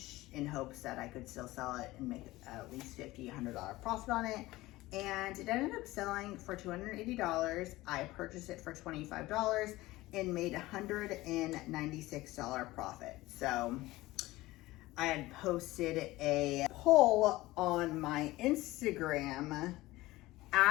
in hopes that I could still sell it and make at least $50, $100 profit on it. And it ended up selling for $280. I purchased it for $25 and made $196 profit. So I had posted a poll on my Instagram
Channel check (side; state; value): right; quieter; 18.5 dB